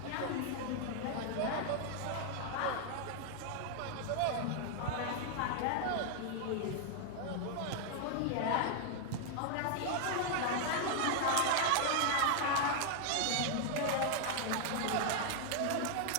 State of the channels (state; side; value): different; both; correlation 0.00